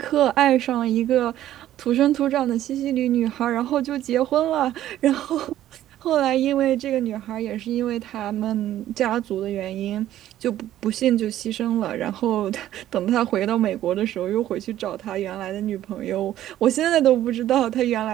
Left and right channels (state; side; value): quieter; left; 12.8 dB